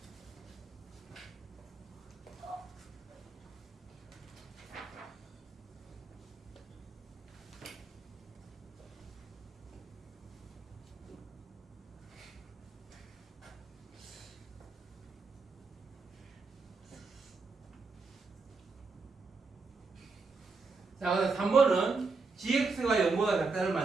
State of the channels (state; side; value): quieter; left; 4.2 dB